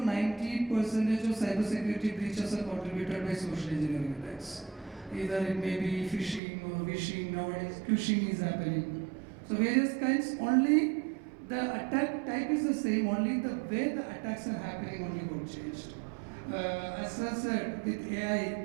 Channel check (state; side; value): drops out; left; at 6.4 s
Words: 90% of cybersecurity breaches are contributed by social engineering attacks. Either it may be phishing or vishing, nowadays phishing is happening. So various kinds, only the attack type is the same, only the way the attacks are happening only got changed. As I said, with